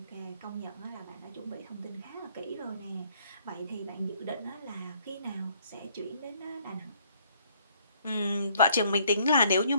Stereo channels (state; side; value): inverted; both; correlation -0.65